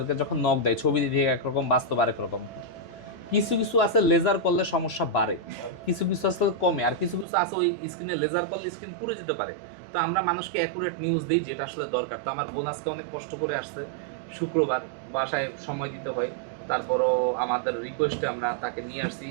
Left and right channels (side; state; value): left; drops out; at 7.2 s